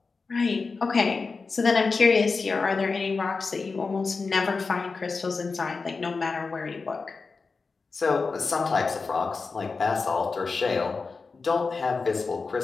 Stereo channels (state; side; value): quieter; right; 4.4 dB